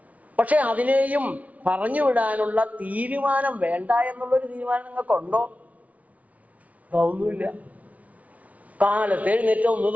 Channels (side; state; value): left; late; 0.069 ms